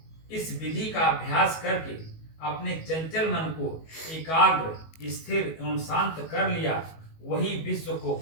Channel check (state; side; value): late; right; 19 ms